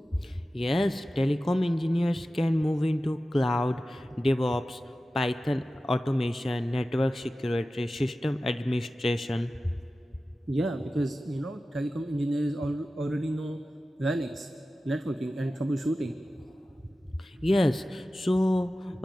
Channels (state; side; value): normal; both; correlation 0.95